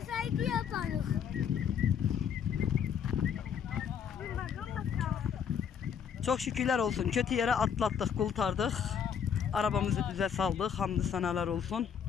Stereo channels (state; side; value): quieter; right; 7.7 dB